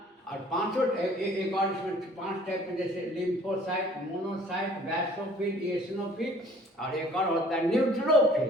और पांचों एक और इसमें 5 टाइप में, जैसे लिम्फोसाइट, मोनोसाइट, बैसोफिल, इओसिनोफिल, और एक और होता है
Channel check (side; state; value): both; normal; correlation 0.54